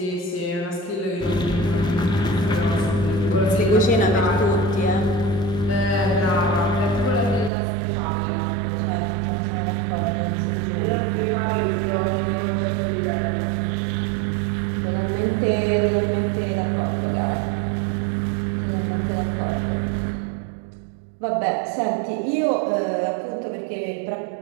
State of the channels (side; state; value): left; drops out; at 7.5 s